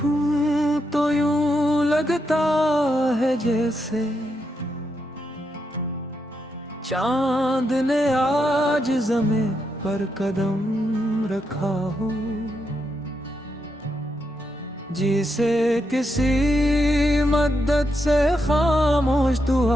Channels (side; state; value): both; normal; correlation 0.82